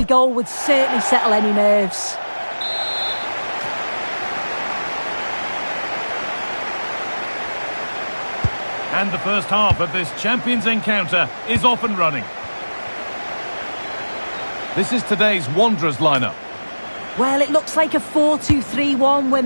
goal would certainly settle any nerves. And the first half of this Champions encounter is off and running. This is today's Wanderers lineup. Well, it looks like a 4-2-3-1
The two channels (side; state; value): both; inverted; correlation -1.00